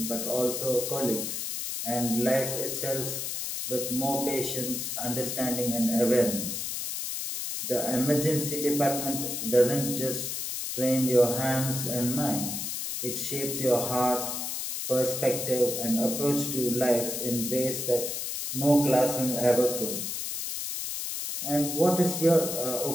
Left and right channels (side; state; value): left; noise; hiss, 4 dB below the sound